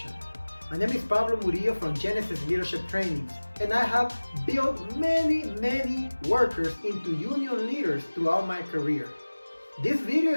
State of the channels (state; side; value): inverted; both; correlation -1.00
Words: My name is Pablo Murillo from Genesis Leadership Trainings, and I have built many workers into union leaders throughout my career. This video